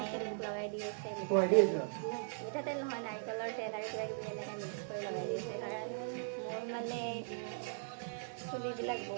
মোক লগাই দি আছে মিঠাতেল নহয়, নাৰিকলৰ তেল আৰু কিবা কিবি এনেকৈ মিক্স কৰি লগাই দি আছে। কাৰণ মোৰ মানে চুলিবিলাক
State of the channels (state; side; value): silent; left; digital silence